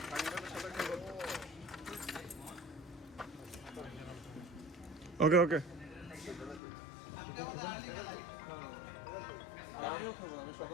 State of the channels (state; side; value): drops out; right; at 6.6 s